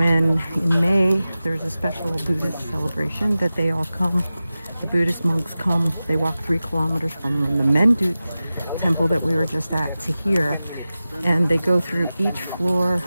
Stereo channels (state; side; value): inverted; both; correlation -0.96